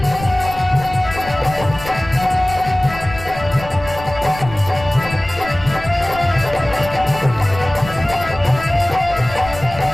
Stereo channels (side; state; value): left; noise; rumble, 13 dB below the sound